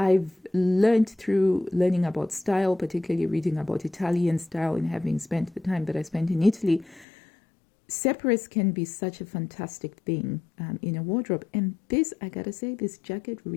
learned through learning about style, particularly reading about Italian style and having spent the time that I spent in Italy, separates can be such a fantastic thing in a wardrobe. And this, I gotta say, this jacket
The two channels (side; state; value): right; drops out; at 7.1 s